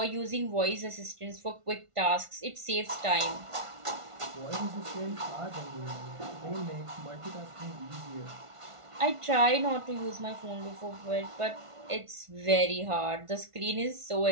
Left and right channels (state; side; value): late; left; 1.5 ms